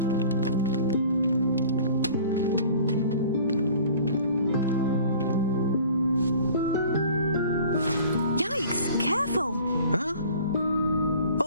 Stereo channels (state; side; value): inverted; both; correlation -0.47